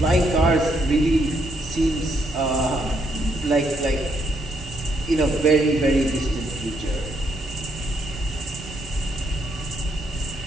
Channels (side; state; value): both; normal; correlation 0.75